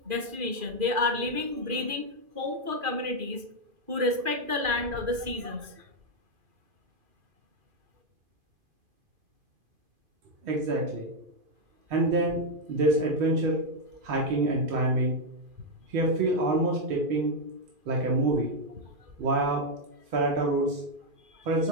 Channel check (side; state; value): left; late; 2.5 ms